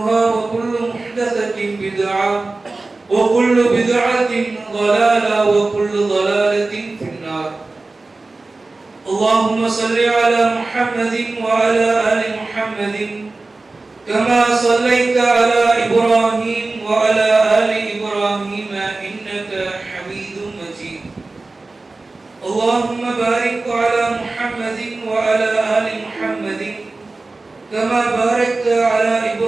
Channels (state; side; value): quieter; left; 3.4 dB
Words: وكل محدثة بدعة وكل بدعة ضلالة وكل ضلالة في النار اللهم صل على محمد وعلى آل محمد كما صليت على إبراهيم وعلى آل إبراهيم إنك حميد مجيد اللهم بارك على محمد وعلى آل محمد كما باركت على